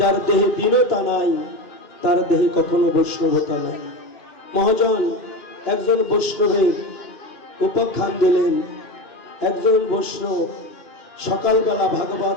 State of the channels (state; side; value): late; right; 2.5 ms